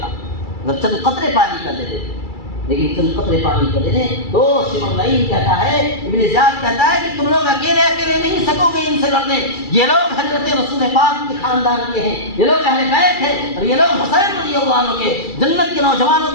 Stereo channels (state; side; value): late; right; 2.3 ms